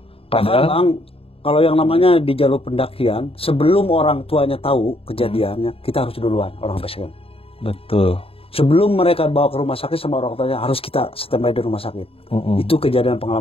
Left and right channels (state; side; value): late; right; 0.27 ms